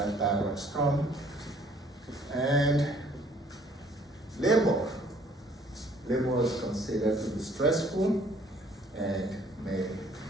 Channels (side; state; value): both; normal; correlation 0.59